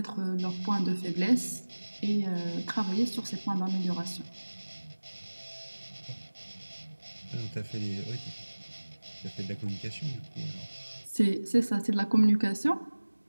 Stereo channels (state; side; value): inverted; both; correlation -1.00